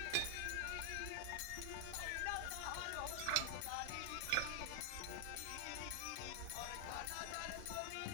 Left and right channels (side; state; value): both; different; correlation -0.01